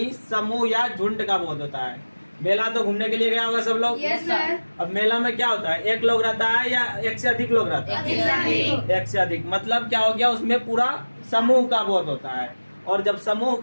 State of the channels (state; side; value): inverted; both; correlation -1.00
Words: समूह या झुंड का बोध होता है। मेला तो घूमने के लिए गया होगा सब लोग। Yes sir. अब मेला में क्या होता है? एक लोग रहता है या एक से अधिक लोग रहता है? एक से अधिक। मतलब क्या हो गया? उसमें पूरा समूह का बोध होता है। और जब समूह